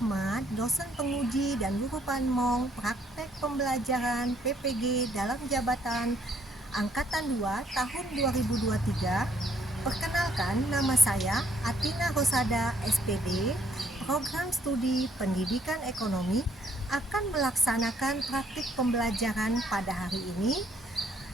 dosen penguji dan guru panmong praktek pembelajaran PPG dalam jabatan Angkatan 2 tahun 2023. Perkenalkan, nama saya Atina Rosada SPD, Program Studi Pendidikan Ekonomi akan melaksanakan praktik pembelajaran pada hari ini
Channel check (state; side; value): normal; both; correlation 0.66